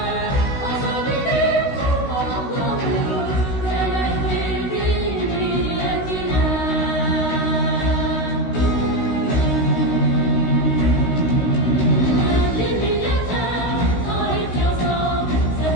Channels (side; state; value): right; late; 16 ms